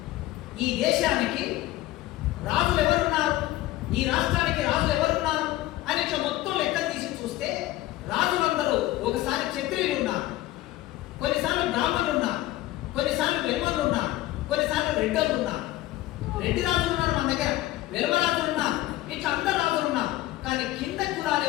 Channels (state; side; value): quieter; right; 16.3 dB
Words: ఈ దేశానికి రాజులు ఎవరున్నారు, ఈ రాష్ట్రానికి రాజులు ఎవరున్నారు అని ఇట్లా మొత్తం లెక్కలు తీసి చూస్తే రాజులందరూ ఒకసారి క్షత్రియులు ఉన్నారు, కొన్నిసార్లు బ్రాహ్మణులు ఉన్నారు, కొన్నిసార్లు వెలుమలు ఉన్నారు, కొన్నిసార్లు రెడ్డలు ఉన్నారు. రెడ్డి రాజులు ఉన్నారు మన దగ్గర, వెలుమ రాజులు ఉన్నారు, ఇట్లా అందరు రాజులు ఉన్నారు. కానీ కింద కులాలు